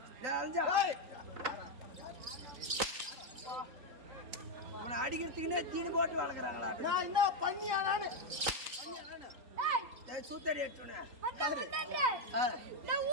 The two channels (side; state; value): left; late; 3.9 ms